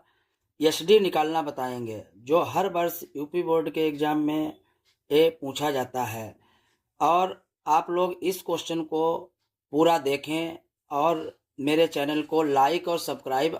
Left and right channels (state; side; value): identical; both; correlation 1.00